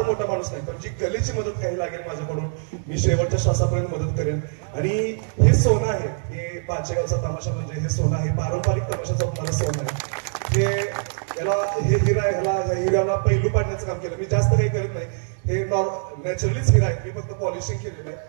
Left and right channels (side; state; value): left; silent; digital silence